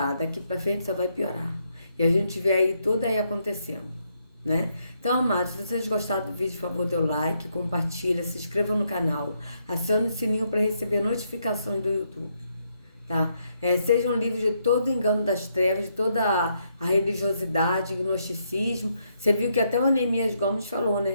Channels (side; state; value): both; inverted; correlation -0.76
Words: daqui para frente só vai piorar. E a gente vê aí tudo aí acontecendo, né? Então, amados, se vocês gostaram do vídeo, por favor, dê o like, compartilha, se inscreva no canal, acione o sininho para receber notificações do YouTube, tá? Sejam livres de todo engano das trevas, de toda a religiosidade, gnosticismo. Você viu que até o Anemias Gomes falou,